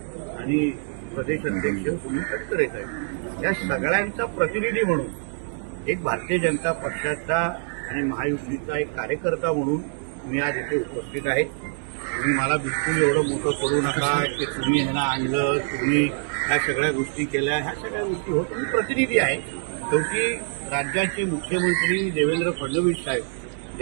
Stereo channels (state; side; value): silent; left; 62 dB below the other